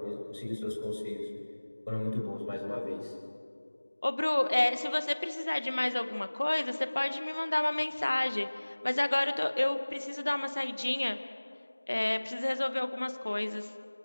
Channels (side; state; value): both; inverted; correlation -1.00